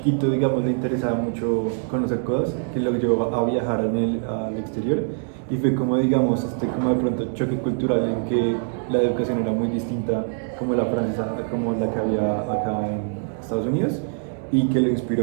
digamos le interesaba mucho conocer cosas, que lo llevó a viajar al exterior y fue como digamos como de pronto choque cultural en que la educación era muy distinta como la francesa a como la que había acá en Estados Unidos y que le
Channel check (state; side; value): silent; left; digital silence